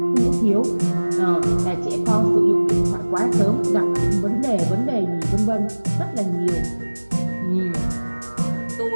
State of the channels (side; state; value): both; inverted; correlation -1.00